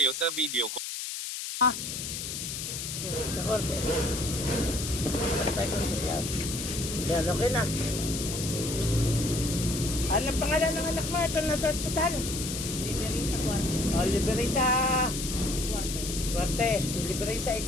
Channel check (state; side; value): noise; left; hiss, 5 dB below the sound